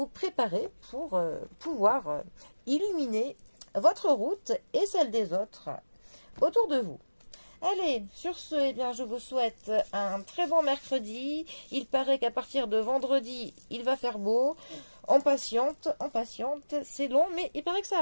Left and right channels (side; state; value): both; inverted; correlation -1.00